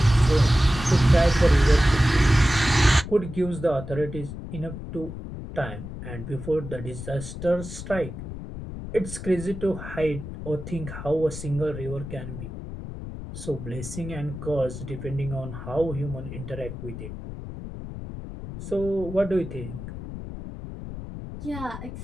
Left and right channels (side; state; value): left; noise; rumble, 9 dB below the sound